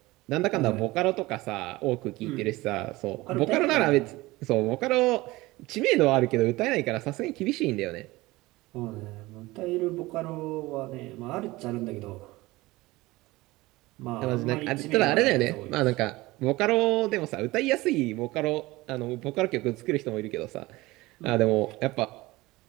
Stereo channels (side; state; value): left; quieter; 20.1 dB